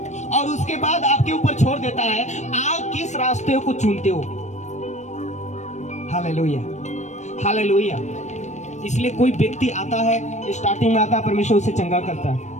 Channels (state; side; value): late; right; 0.34 ms